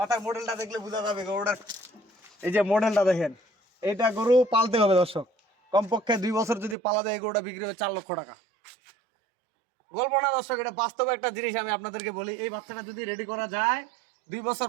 মডেলটা দেখলে বোঝা যাবে গরুটার, এই যে মডেলটা দেখেন। এইটা গরু পালতে হবে দর্শক, কমপক্ষে 2 বছর যদি পালা যায় এই গরুটা বিক্রি হবে 4 লক্ষ টাকা। গল্প না দর্শক, এটা বাস্তবে একটা জিনিস। আমি আপনাদেরকে বলি, এই বাচ্চাটা যদি রেডি করা যায় 2 বছর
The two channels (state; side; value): drops out; left; at 6.8 s